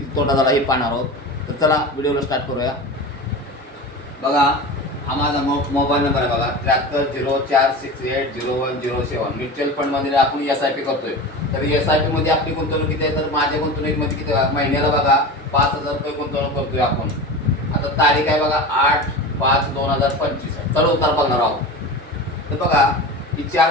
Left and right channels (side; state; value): both; normal; correlation 0.30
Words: तोटा झाला हे पाहणार आहोत. तर चला व्हिडिओला स्टार्ट करूया. बघा, हा माझा मोबाईल नंबर आहे. बघा 7304680107. म्युच्युअल फंडमध्ये आपण SIP करतोय. तर SIP मध्ये आपली गुंतवणूक किती आहे? तर माझ्या गुंतवणुकीमध्ये किती महिन्याला बघा 5,000 रुपये गुंतवणूक करतोय आपण. आता तारीख आहे बघा 8/5/2025. चला उतार बघणार आहोत. तर बघा, ही